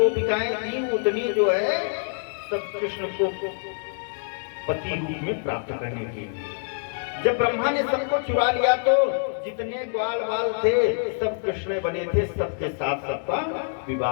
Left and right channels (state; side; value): silent; right; digital silence